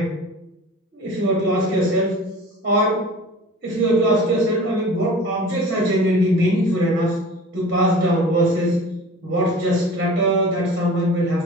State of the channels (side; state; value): both; normal; correlation 0.40